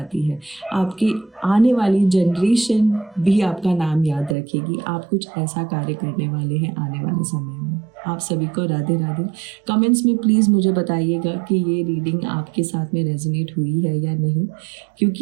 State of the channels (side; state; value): left; drops out; at 4.4 s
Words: है, आपकी आने वाली जनरेशन भी आपका नाम याद रखेगी। आप कुछ ऐसा कार्य करने वाले हैं आने वाले समय में। आप सभी को राधे राधे। कमेंट्स में प्लीज़ मुझे बताइएगा कि ये रीडिंग आपके साथ में रेजोनेट हुई है या नहीं,